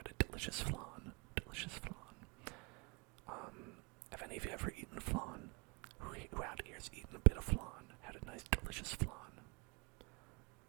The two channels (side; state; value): left; quieter; 32.2 dB